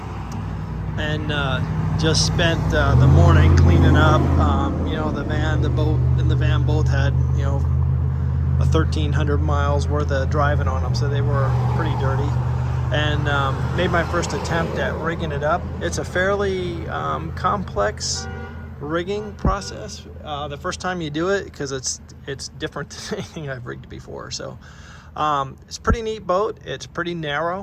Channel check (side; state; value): both; identical; correlation 1.00